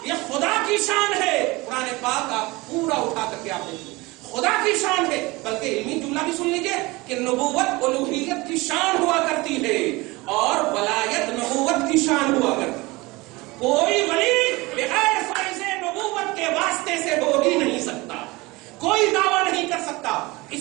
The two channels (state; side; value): quieter; left; 22.6 dB